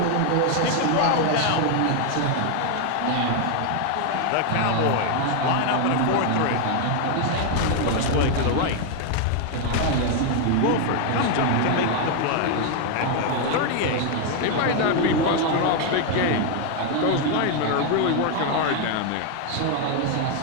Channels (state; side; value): different; both; correlation 0.00